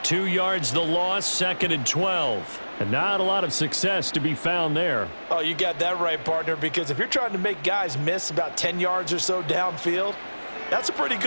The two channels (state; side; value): inverted; both; correlation -1.00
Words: 2 yards the loss, 2nd and 12. And not a lot of success to be found there. Oh, you got that right, partner, because if you're trying to make guys miss about 10 yards or so downfield, that's a pretty